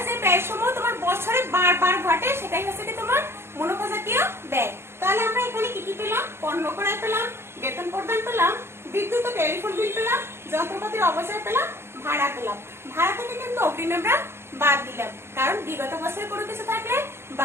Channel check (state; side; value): late; left; 0.12 ms